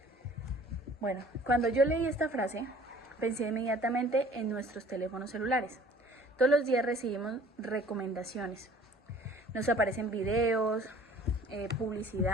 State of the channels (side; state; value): both; normal; correlation 0.51